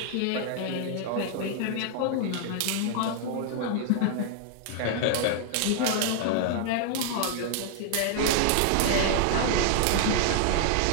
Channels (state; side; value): different; both; correlation 0.00